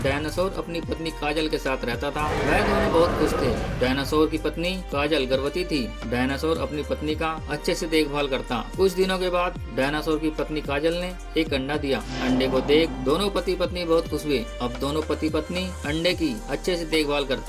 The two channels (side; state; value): both; identical; correlation 1.00